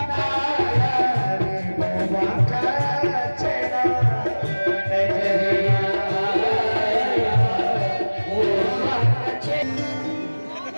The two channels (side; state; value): both; inverted; correlation -1.00